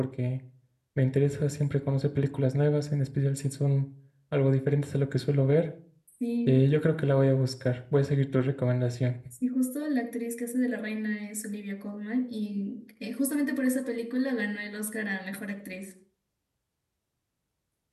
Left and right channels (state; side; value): identical; both; correlation 1.00